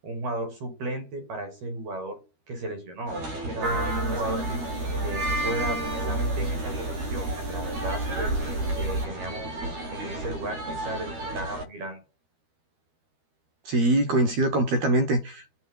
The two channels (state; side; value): late; left; 13 ms